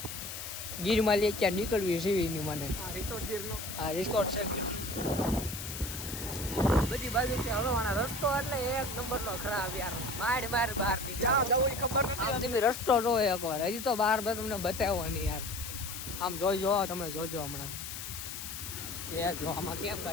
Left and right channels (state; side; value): noise; left; hiss, 8 dB below the sound